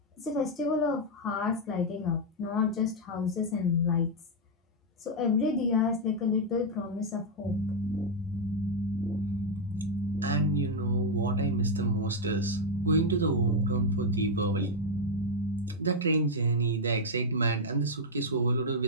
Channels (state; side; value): normal; both; correlation -0.01